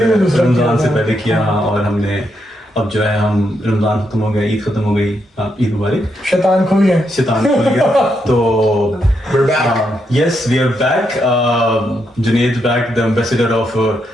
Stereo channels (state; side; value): normal; both; correlation 0.80